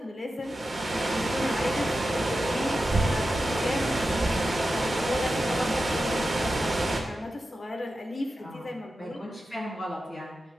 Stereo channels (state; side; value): normal; both; correlation 0.92